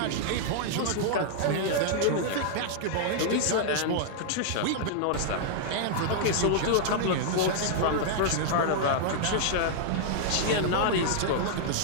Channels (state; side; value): different; both; correlation -0.01